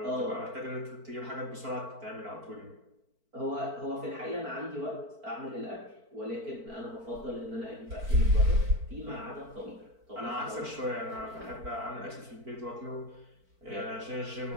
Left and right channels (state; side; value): late; left; 4.5 ms